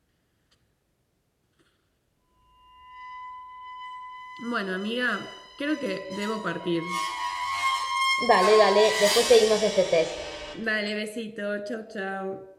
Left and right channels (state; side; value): identical; both; correlation 1.00